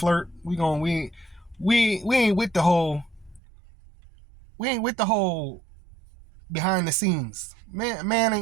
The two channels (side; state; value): left; drops out; at 3.4 s